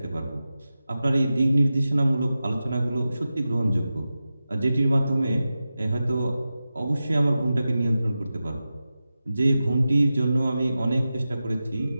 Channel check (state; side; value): inverted; both; correlation -0.93